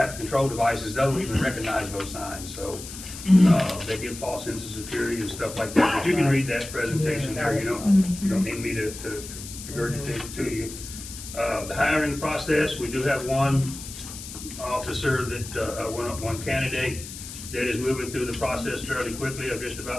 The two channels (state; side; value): noise; left; hiss, 11 dB below the sound